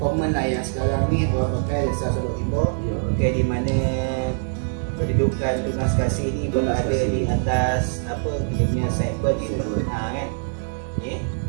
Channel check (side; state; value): left; silent; digital silence